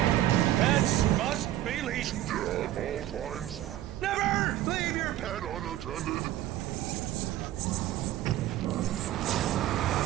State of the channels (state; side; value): quieter; left; 13.7 dB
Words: Pets must be leashed. Yeah, at all times. Never leave your pet. Pet unattended.